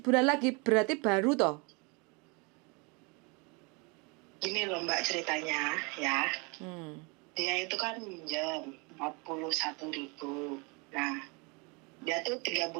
bulan lagi berarti baru toh? Gini loh Mbak ceritanya ya. Dia itu kan minjem 41.000. Nah, dia tuh 3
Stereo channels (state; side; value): quieter; left; 30.2 dB